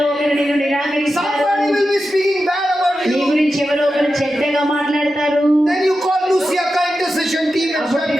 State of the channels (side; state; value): both; normal; correlation 0.91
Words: ఒకరు నిన్ను నిరాకరిస్తారు. Somebody will be speaking bad about నీ you. గురించి ఎవరో ఒకరు చెడ్డగా మాట్లాడతారు. Then you call Luciaka intercession team and start